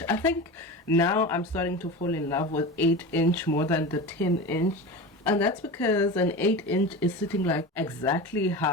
I think now I'm starting to fall in love with 8-inch more than the 10-inch. And that's because an 8-inch is sitting like exactly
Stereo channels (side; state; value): both; normal; correlation 0.28